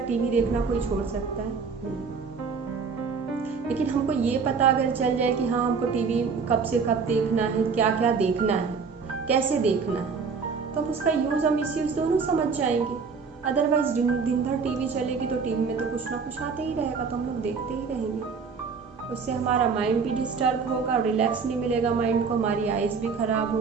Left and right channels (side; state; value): left; quieter; 5.3 dB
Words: टीवी देखना कोई छोड़ सकता है? नहीं। लेकिन हमको ये पता अगर चल जाए कि हाँ हमको टीवी कब से कब देखना है, क्या क्या देखना है, कैसे देखना है, तो उसका यूज़ और मिसयूज़ दोनों समझ जाएंगे। अदरवाइज दिन भर टीवी चलेगी तो टीवी में तो कुछ ना कुछ आते ही रहेगा, तो हम लोग देखते ही रहेंगे। उससे हमारा माइंड भी डिस्टर्ब होगा, रिलैक्स नहीं मिलेगा माइंड को, हमारी आइज़ भी ख़राब